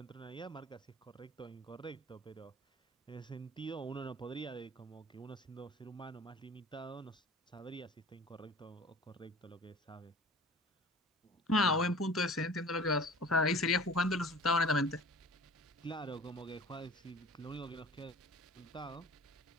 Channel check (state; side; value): normal; both; correlation 0.43